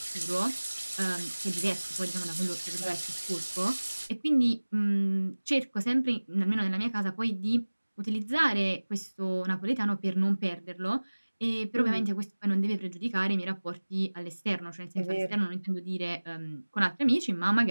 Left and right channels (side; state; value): both; inverted; correlation -1.00